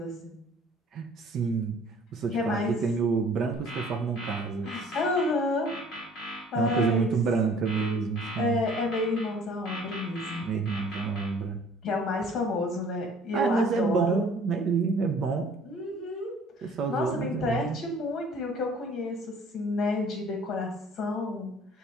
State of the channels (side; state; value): both; normal; correlation 0.53